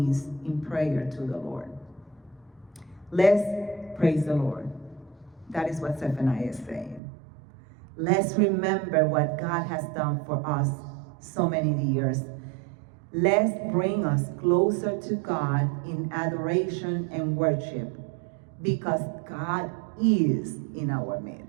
in prayer to the Lord. Let's praise the Lord. That is what Zephaniah is saying. Let's remember what God has done for us so many years. Let's bring us closer to God in adoration and worship, because God is in our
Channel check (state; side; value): drops out; left; at 7.0 s